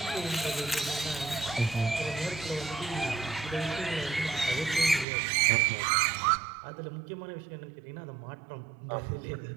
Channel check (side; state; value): left; drops out; at 5.1 s